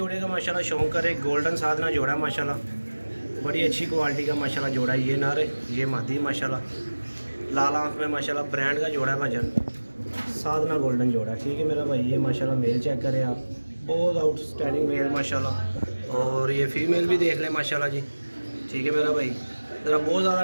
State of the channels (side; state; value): both; inverted; correlation -1.00